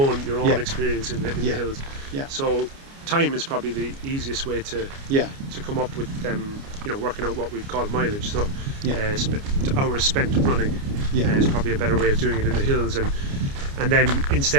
experience in the hills. So time is probably the easiest way to come up with working out what we'd call mileage. So hours spent running is probably a better way of doing it in the hills. And then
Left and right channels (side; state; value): left; late; 29 ms